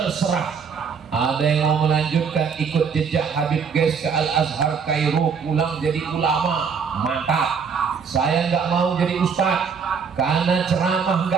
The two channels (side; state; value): left; quieter; 6.1 dB